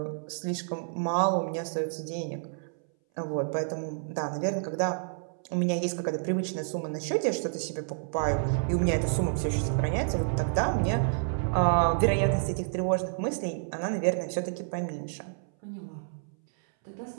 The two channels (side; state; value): left; silent; 58 dB below the other